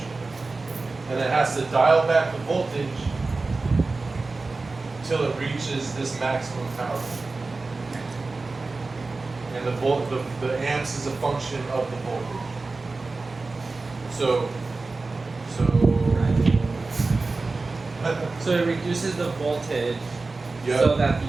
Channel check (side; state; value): left; quieter; 3.7 dB